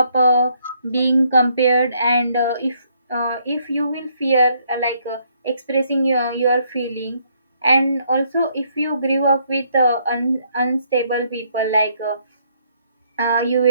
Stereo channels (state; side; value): inverted; both; correlation -0.70